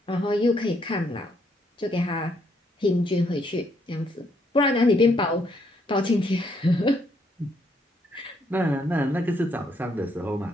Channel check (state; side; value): normal; both; correlation 0.72